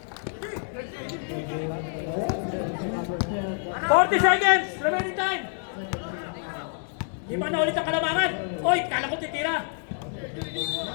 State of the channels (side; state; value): right; silent; 60 dB below the other